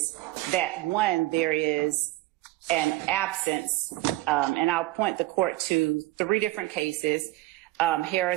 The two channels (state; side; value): quieter; left; 18.2 dB